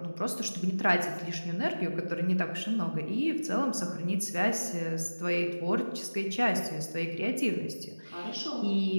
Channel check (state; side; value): inverted; both; correlation -1.00